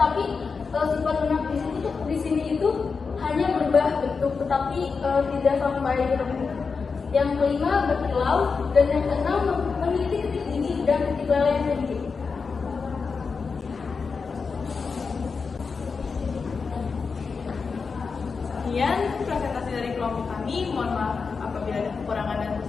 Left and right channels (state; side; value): quieter; right; 5.0 dB